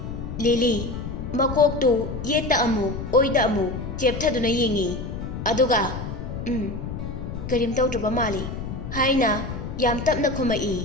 ꯂꯤꯂꯤ ꯃꯀꯣꯛꯇꯨ ꯌꯦꯠꯇ ꯑꯃꯨꯛ ꯑꯣꯏꯗ ꯑꯃꯨꯛ ꯆꯦꯞꯊꯗꯨꯅ ꯌꯦꯡꯉꯤ꯫ ꯑꯗꯨꯒ ꯀꯔꯤꯝ ꯇꯧꯗ꯭ꯔꯕ ꯃꯥꯜꯂꯤ ꯍꯥꯏꯅ ꯌꯥꯝ ꯇꯞꯅ ꯈꯨꯝꯃꯛꯏ꯫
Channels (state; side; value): noise; left; rumble, 7 dB below the sound